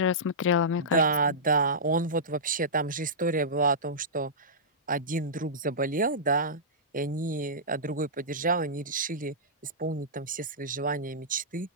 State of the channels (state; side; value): normal; both; correlation -0.16